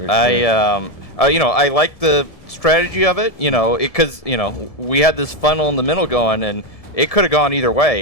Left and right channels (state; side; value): late; right; 1.7 ms